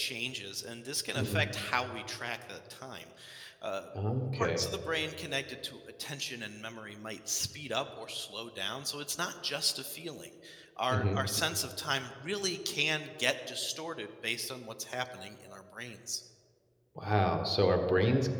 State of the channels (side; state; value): both; identical; correlation 1.00